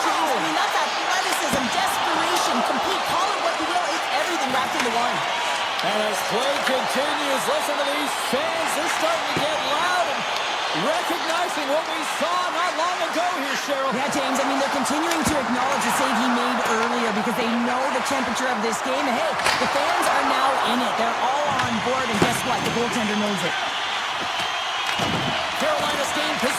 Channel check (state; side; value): identical; both; correlation 1.00